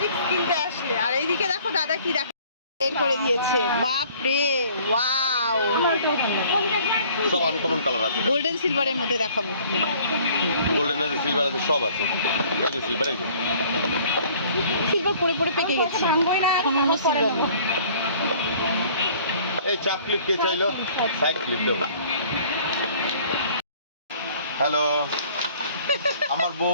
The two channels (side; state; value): both; inverted; correlation -0.54